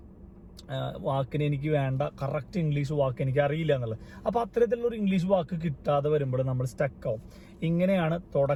എനിക്ക് വേണ്ട കറക്റ്റ് ഇംഗ്ലീഷ് വാക്ക് എനിക്ക് അറിയില്ല എന്നുള്ളത്. അപ്പോൾ അത്തരത്തിലുള്ളൊരു ഇംഗ്ലീഷ് വാക്ക് കിട്ടാതെ വരുമ്പോൾ നമ്മൾ സ്റ്റക്കാവും. ഇങ്ങനെയാണ്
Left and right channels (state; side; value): identical; both; correlation 1.00